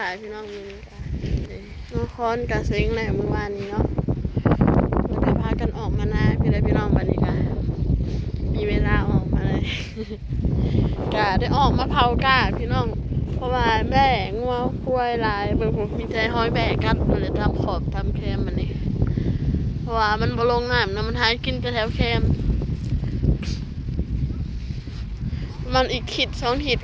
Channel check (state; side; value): identical; both; correlation 1.00